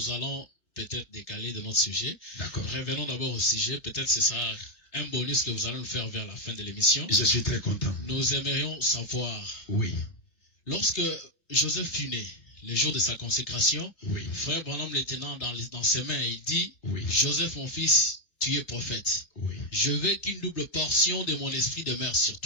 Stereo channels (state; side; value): late; right; 3.4 ms